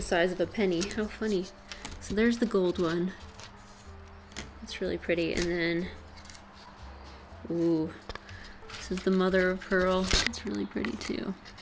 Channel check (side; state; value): both; identical; correlation 1.00